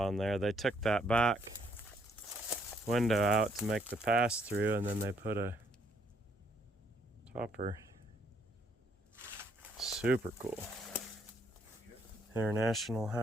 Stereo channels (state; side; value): normal; both; correlation 0.69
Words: there. They took that back window out to make the pass through, and then they put a topper. Super cool. International